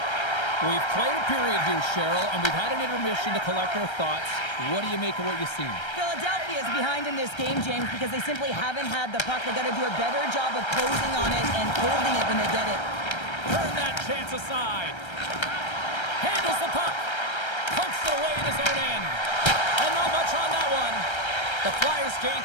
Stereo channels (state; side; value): late; right; 1.3 ms